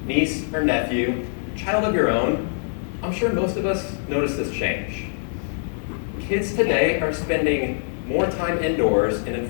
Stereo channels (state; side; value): silent; right; 61 dB below the other